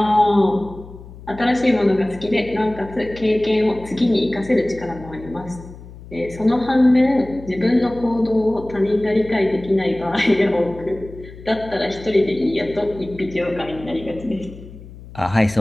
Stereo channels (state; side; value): noise; left; hum, 17 dB below the sound